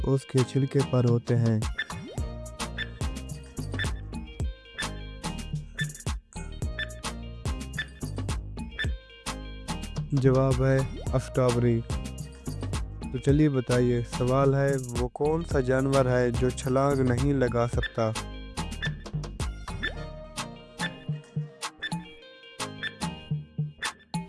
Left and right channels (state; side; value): identical; both; correlation 1.00